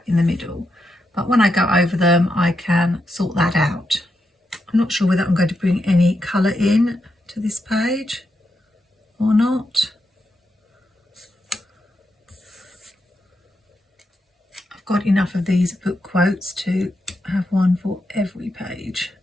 in the middle, but when I go over them I can sort that out. I'm not sure whether I'm going to bring any colour in to this page or not. I've got enough of these book quotes to have one for every page,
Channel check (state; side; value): normal; both; correlation 0.84